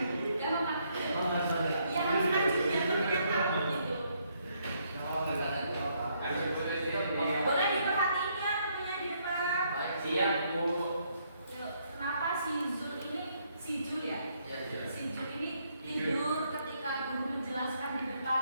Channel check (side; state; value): both; inverted; correlation -0.72